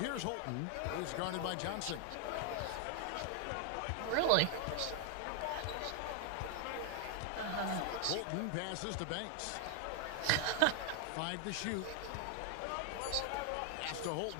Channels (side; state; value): both; different; correlation 0.00